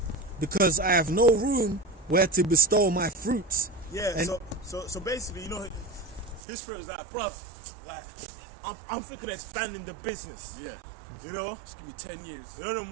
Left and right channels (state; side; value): drops out; left; at 6.4 s